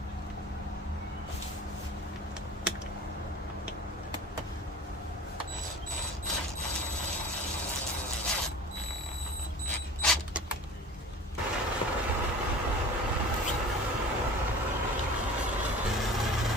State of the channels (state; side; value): normal; both; correlation 0.39